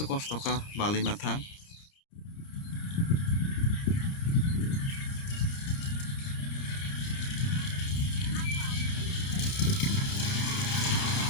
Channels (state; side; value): late; right; 30 ms